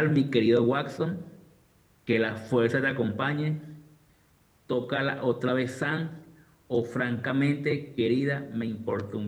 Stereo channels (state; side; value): identical; both; correlation 1.00